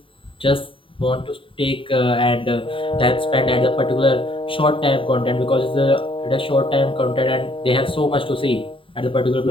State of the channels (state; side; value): late; right; 0.25 ms